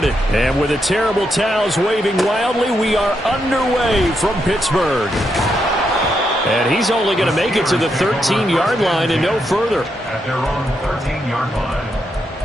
And with the terrible towels waving wildly, we are underway from Pittsburgh. And he's only going to make it to the 13-yard line and no further. At their own 13-yard line.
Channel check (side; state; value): both; normal; correlation 0.81